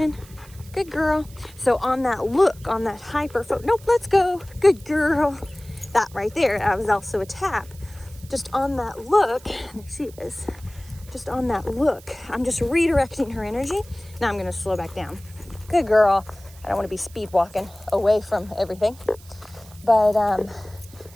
Good girl. So on that look, on that hyper nope, let's go. Good girl. That right there, that was also a tap. Just on that look, there she is. Just on that look, I'm just redirecting her energy. Now I'm gonna slow back down. Good girl. I don't wanna be speed walking away from everything. But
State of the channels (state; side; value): noise; right; hiss, 23 dB below the sound